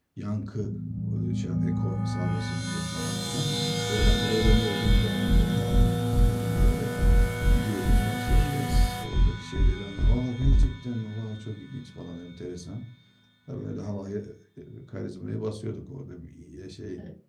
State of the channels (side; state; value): both; identical; correlation 1.00